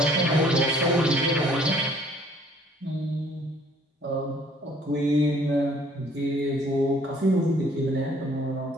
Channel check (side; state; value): both; normal; correlation 0.58